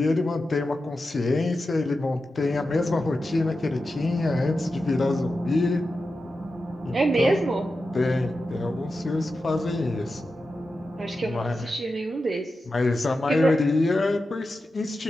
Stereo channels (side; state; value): both; normal; correlation 0.91